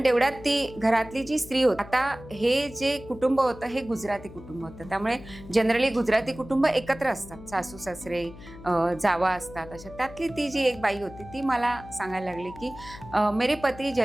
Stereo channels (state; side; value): noise; left; hum, 17 dB below the sound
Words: तेवढ्यात ती घरातली जी स्त्री होती, आता हे जे कुटुंब होतं हे गुजराती कुटुंब होतं, त्यामुळे जनरली गुजराती कुटुंब एकत्र असतात, सासू सासरे जावा असतात अशा। त्यातली ती जी एक बाई होती ती मला सांगायला लागली की मेरे पती